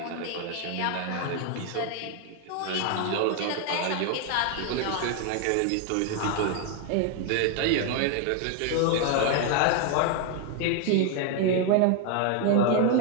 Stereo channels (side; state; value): both; different; correlation 0.00